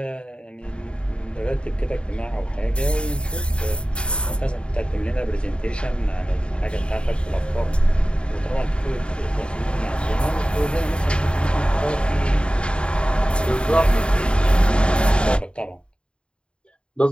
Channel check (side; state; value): right; late; 0.053 ms